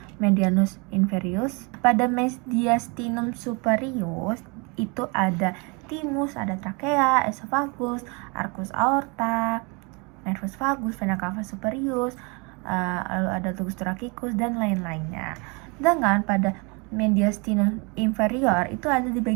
medianus inferius? Pada mediastinum superius itu ada thymus, ada trachea, esophagus, arcus aorta, nervus vagus, vena cava superius, lalu ada tugus thoracic dan lain-lainnya. Sedangkan pada mediastinum inferior itu ada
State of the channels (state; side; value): quieter; left; 30.5 dB